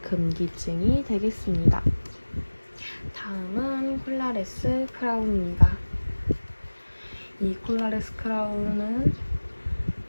금기증이 되겠습니다. 다음은 콜라레스 크라운입니다. 이 콜라레스 크라운은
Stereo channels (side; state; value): both; inverted; correlation -1.00